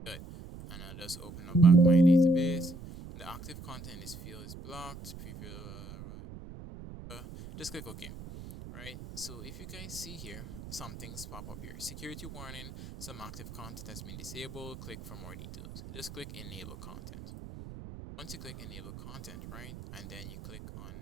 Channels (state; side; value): noise; right; rumble, 13 dB below the sound